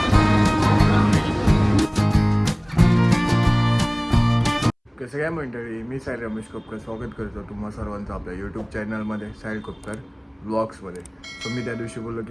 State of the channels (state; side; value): identical; both; correlation 1.00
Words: कसं काय मंडळी, मी साहिल रमेश कोपकर स्वागत करतो तुम्हा सर्वांचं आपल्या यूट्यूब चॅनलमध्ये साहिल कोपकर व्लॉग्समध्ये. सो मी त्या दिवशी बोललो